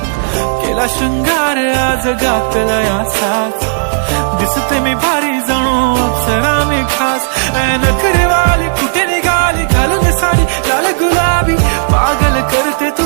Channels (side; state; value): left; silent; digital silence